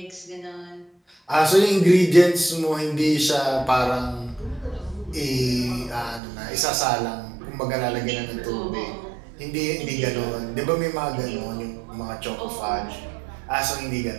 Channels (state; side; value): drops out; left; at 6.2 s